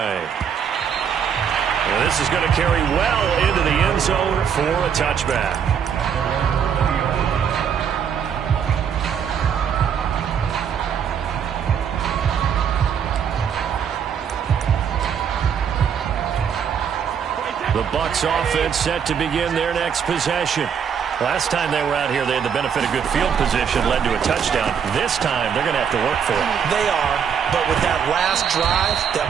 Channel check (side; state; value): left; quieter; 7.6 dB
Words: And this is going to carry well into the end zone for a touchback. The Bucs offense set to begin their next possession. Last time they were out here, they had the benefit of good field position, led to a touchdown. This time, they're going to have to work for it. They are, but with that last drive